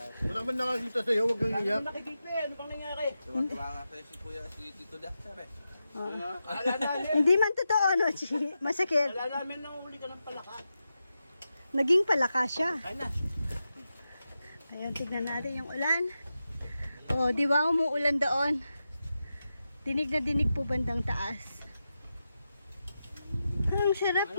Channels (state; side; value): inverted; both; correlation -0.90